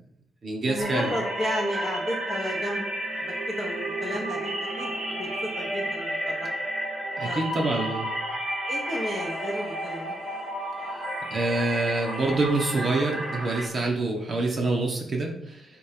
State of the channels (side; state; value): both; normal; correlation 0.80